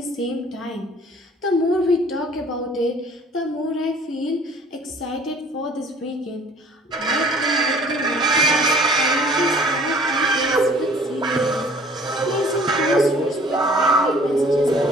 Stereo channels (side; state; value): both; normal; correlation 0.52